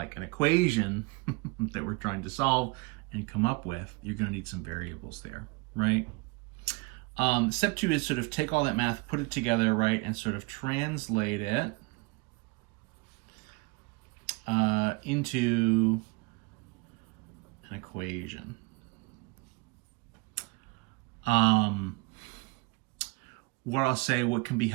an equation that we're trying to solve and come up with, you're going to need some variables there, right? Step 2 is sort of take all that math, put it together, right, and sort of translate it into an equation. What I'll say, what can be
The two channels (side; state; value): left; quieter; 26.5 dB